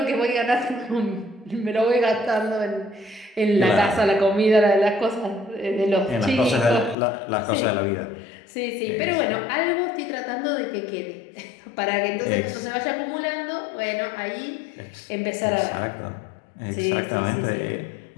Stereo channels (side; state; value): right; drops out; at 7.0 s